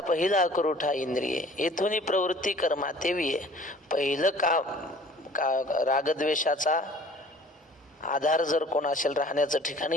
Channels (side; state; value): both; normal; correlation 0.50